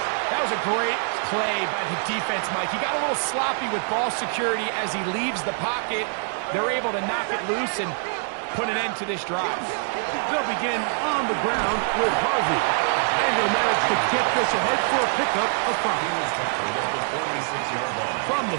That was a great play by the defense, Mike. He got a little sloppy with ball security as he leaves the pocket. They're able to knock it loose and put an end to this drive. They'll begin on the ground with Harvey, and they'll manage to get this ahead for a pickup of 5. From the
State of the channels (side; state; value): left; silent; 57 dB below the other